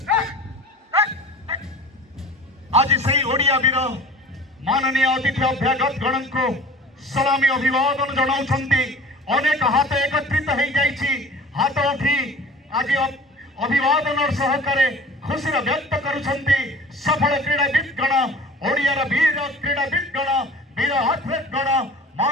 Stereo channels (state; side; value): normal; both; correlation 0.42